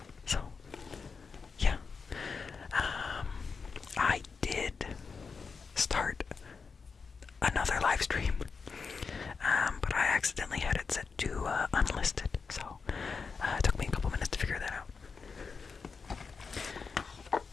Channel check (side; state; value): right; quieter; 5.1 dB